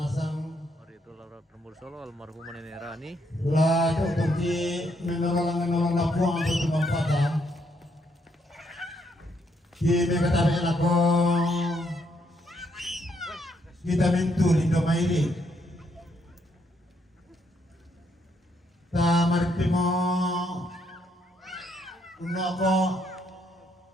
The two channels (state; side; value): normal; both; correlation 0.74